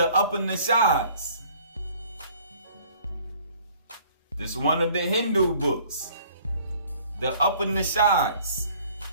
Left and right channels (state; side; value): inverted; both; correlation -0.55